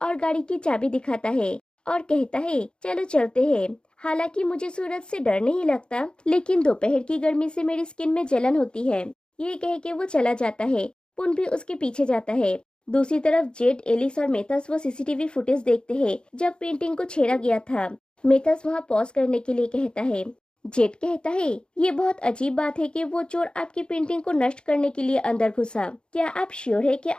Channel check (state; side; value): late; right; 0.051 ms